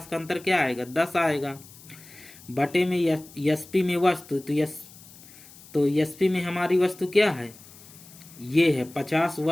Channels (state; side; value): noise; left; hiss, 21 dB below the sound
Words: का अंतर क्या आएगा, 10 आएगा। बटे में एसपी में वस्तु, तो एसपी में हमारी वस्तु क्या है, ये है 50